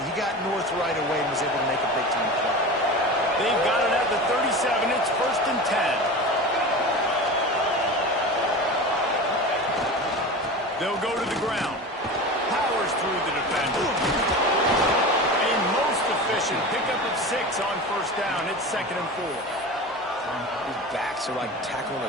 He got north right away and was able to make a big-time play. They've got it at the 37. It's 1st and 10. They'll go to the ground. Powers through the defender. A most efficient pickup of 6 on 1st down. It's 2nd and 4. These backs are like tackling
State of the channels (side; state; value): both; normal; correlation 0.30